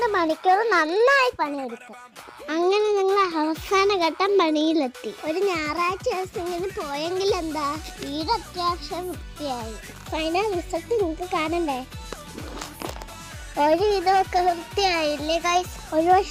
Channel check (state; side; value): identical; both; correlation 1.00